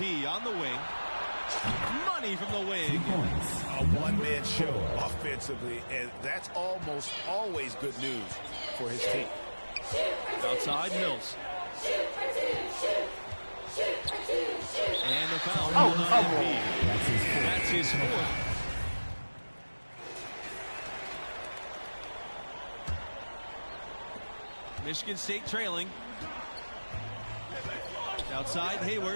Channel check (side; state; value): both; inverted; correlation -1.00